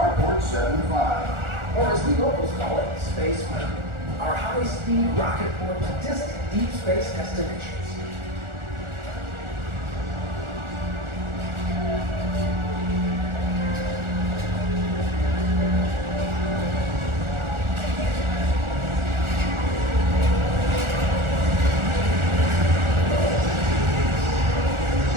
75. Or as the locals call it, Space Mountain. Our high-speed rocket port to distant deep space destinations.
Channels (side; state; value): left; late; 1.4 ms